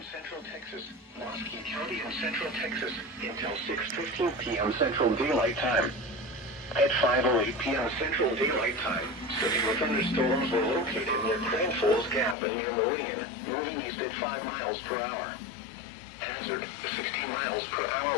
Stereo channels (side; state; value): right; drops out; at 12.4 s